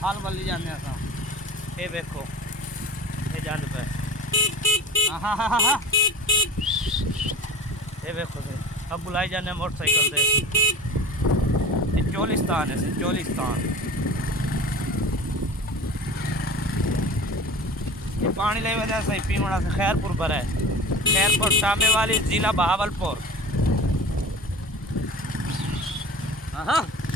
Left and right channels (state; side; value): normal; both; correlation 0.36